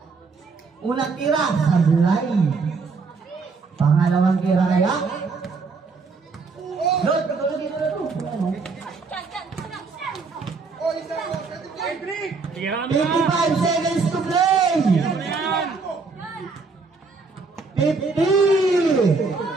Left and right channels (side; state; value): left; quieter; 4.4 dB